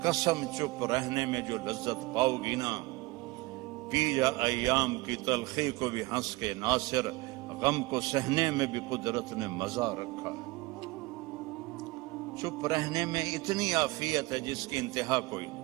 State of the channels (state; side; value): quieter; left; 22.1 dB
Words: قسم چپ رہنے میں جو لذت پاؤ گی نا، پی جا ایام کی تلخی کو بھی ہنس کے ناصر، غم کو سہنے میں بھی قدرت نے مزہ رکھا ہے۔ چپ رہنے میں اتنی عافیت ہے جس کی انتہا کوئی نہیں۔